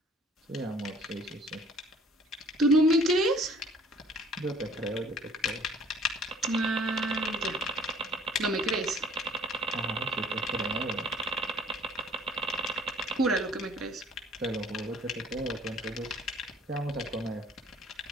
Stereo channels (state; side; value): normal; both; correlation 0.54